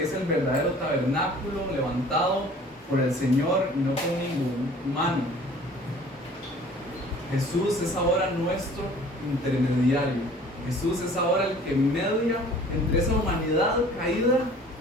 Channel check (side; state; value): both; normal; correlation 0.50